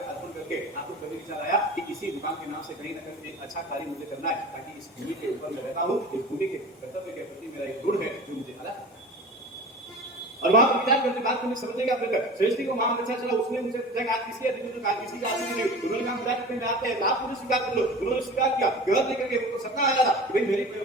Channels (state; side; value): normal; both; correlation 0.36